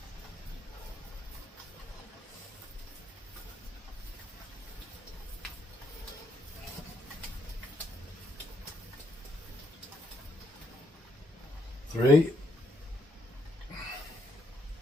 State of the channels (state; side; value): normal; both; correlation 0.75